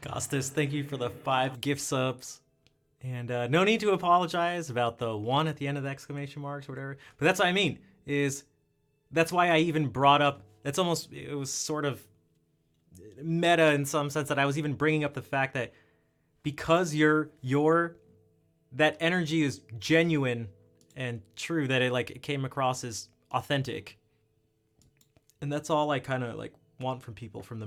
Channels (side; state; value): both; identical; correlation 1.00